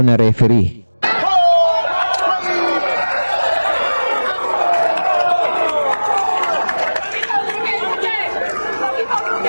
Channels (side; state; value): both; inverted; correlation -1.00